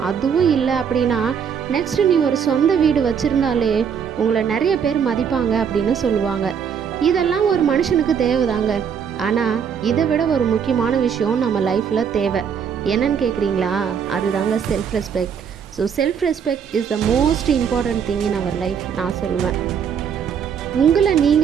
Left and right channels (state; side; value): quieter; left; 7.4 dB